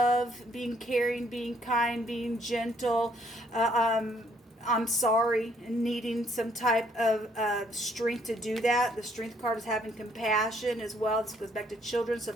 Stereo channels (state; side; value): normal; both; correlation 0.67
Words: being caring, being kind, being gentle. I'm sorry, and needing some type of strength to do that. The Strength card is having compassion as well. This goes back to children. So